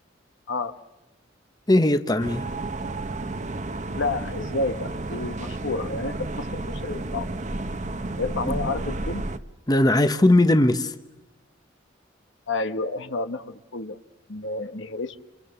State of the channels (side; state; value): both; normal; correlation 0.62